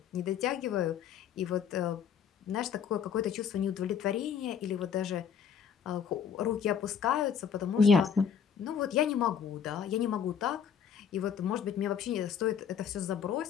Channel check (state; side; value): quieter; right; 7.7 dB